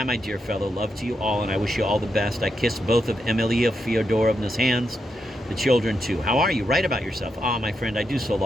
my dear fellow. Love to you all, and I wish you all the best. I kiss both of Emilia Fyodorovna's hands, the children too. How are you? Write about yourself. Ah, my friend, I do so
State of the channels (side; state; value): both; normal; correlation 0.84